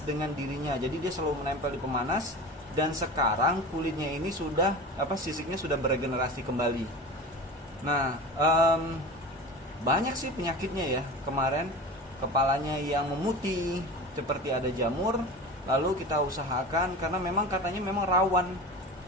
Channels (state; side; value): normal; both; correlation 0.33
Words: dirinya. Jadi dia selalu menempel di pemanas, dan sekarang kulitnya ini sudah sisiknya sudah beregenerasi kembali. Nah, banyak sih penyakitnya ya. Kemarin kepalanya yang memutih seperti ada jamur. Lalu kita usahakan, karena memang katanya memang rawan